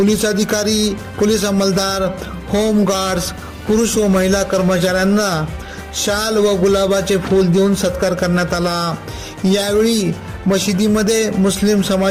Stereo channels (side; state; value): both; identical; correlation 1.00